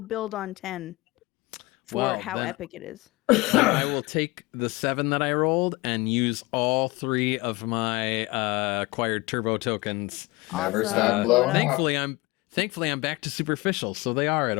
build on 10 for Well, how then- epic it is. I will take the 7 that I rolled and use all 3 of my acquired turbo tokens. Never Awesome. stop Blow it blowing up. up. Thankfully, I'm back to superficial, so they are at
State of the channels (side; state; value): right; quieter; 22.4 dB